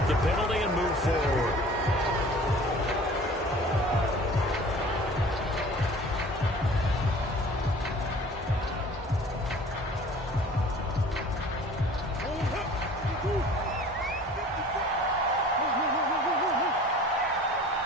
the penalty and move forward.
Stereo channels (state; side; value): normal; both; correlation 0.46